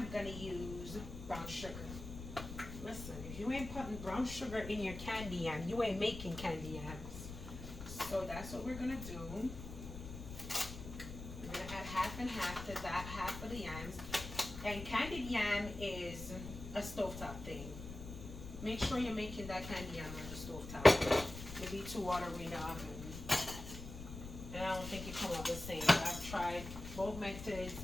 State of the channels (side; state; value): left; noise; rumble, 10 dB below the sound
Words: going to use brown sugar. Listen, if you ain't putting brown sugar in your candy yam, you ain't making candy yams. So that's what we're going to do. We're going to add half and half to that half of the yams. And candied yam is a stovetop thing. Make sure you're making that candy yam on the stovetop. It'll be too watery in the oven. And I don't think it comes out the same. I've tried both methods,